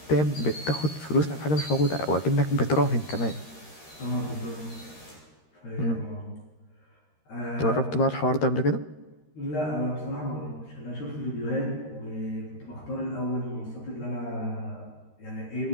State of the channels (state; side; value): late; right; 13 ms